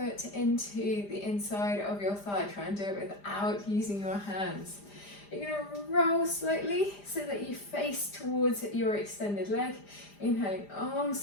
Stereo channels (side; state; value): right; late; 5.0 ms